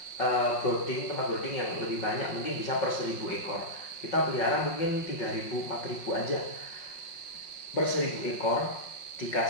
tempat brooding yang lebih banyak, mungkin bisa per 1000 ekor. Kita pelihara mungkin 3000 4000 aja per 1000 ekor,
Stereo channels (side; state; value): right; late; 5.5 ms